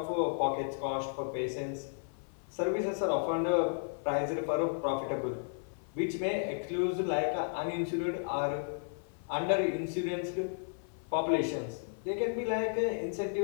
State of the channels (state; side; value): silent; right; 55 dB below the other